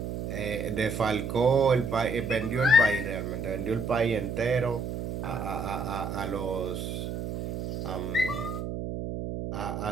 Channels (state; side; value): noise; right; hum, 5 dB below the sound